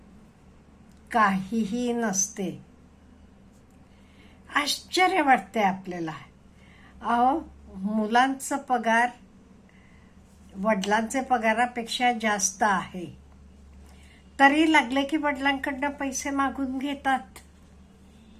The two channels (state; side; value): identical; both; correlation 1.00